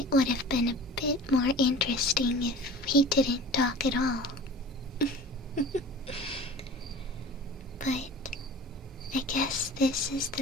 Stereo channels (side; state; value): both; normal; correlation 0.40